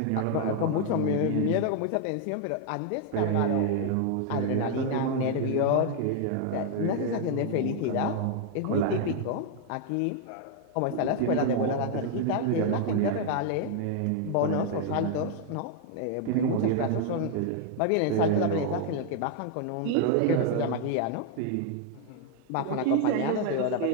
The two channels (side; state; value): both; different; correlation 0.00